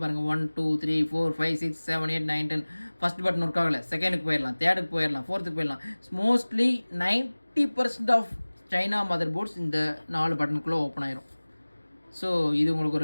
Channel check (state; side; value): inverted; both; correlation -1.00